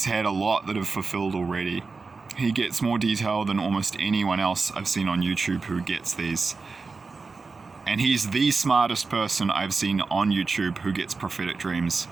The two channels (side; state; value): left; quieter; 4.3 dB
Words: had a lot that have fulfilled already. He gets more detail than almost anyone else I've seen on YouTube who gets these. And he's the smartest person I've seen on YouTube who gets prophetic dreams